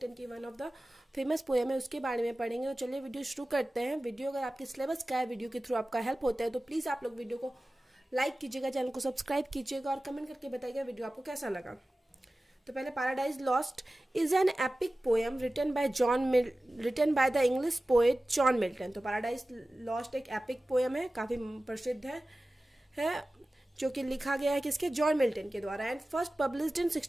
की one of the famous poem है, उसके बारे में पढ़ेंगे। तो चलिए वीडियो शुरू करते हैं। वीडियो अगर आपके सिलेबस का है, वीडियो के थ्रू आपका हेल्प होता है, तो प्लीज़ आप लोग वीडियो को लाइक कीजिएगा, चैनल को सब्सक्राइब कीजिएगा और कमेंट करके बताइएगा वीडियो आपको कैसा लगा। तो पहले Paradise Lost is an epic poem written by the English poet John Milton. तो पैराडाइज लॉस्ट एक एपिक पोएम है, काफ़ी प्रसिद्ध है जो कि लिखा गया है किसके, जॉन मिल्टन के द्वारा, एंड फर्स्ट पब्लिश्ड इन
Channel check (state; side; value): normal; both; correlation 0.96